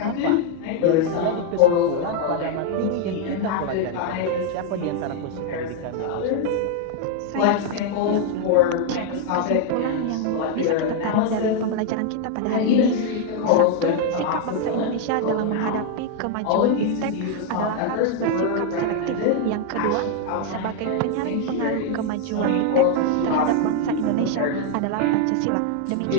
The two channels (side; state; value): both; different; correlation 0.00